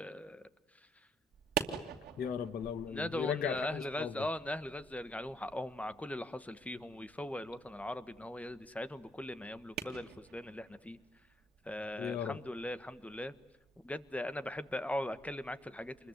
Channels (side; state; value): both; normal; correlation 0.71